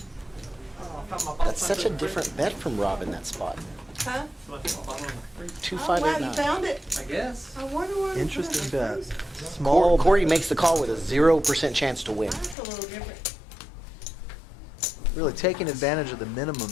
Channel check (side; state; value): right; drops out; at 12.6 s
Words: That's such a different bet from Rob in that spot. Huh? 2, Oh, 5, wow, 8, you 9. found it? I guess. I wonder where you Interesting found it. bet. That's Small. Corey makes the call with a 0% chance to win. a little different. Really taking advantage of the minimum